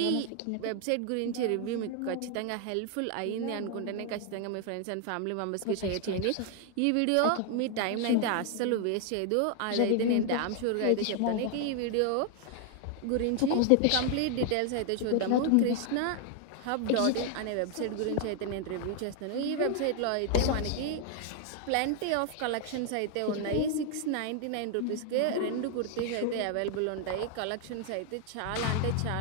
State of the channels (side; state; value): both; different; correlation 0.00